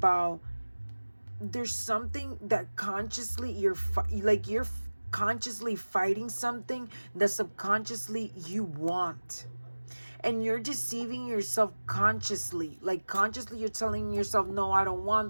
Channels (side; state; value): both; inverted; correlation -1.00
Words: there's something that consciously you're consciously fighting something that subconsciously you want. And you're deceiving yourself consciously. Like, consciously you're telling yourself, no, I don't